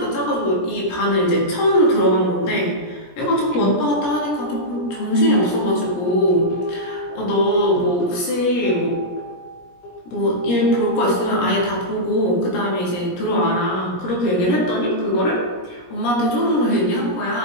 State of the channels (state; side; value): late; right; 17 ms